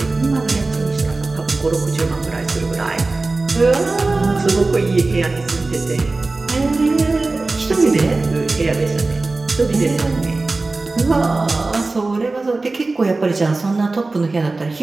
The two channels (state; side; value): quieter; left; 3.4 dB